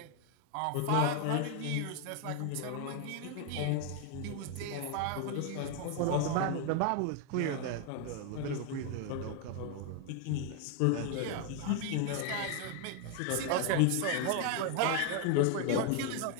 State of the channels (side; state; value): both; different; correlation 0.01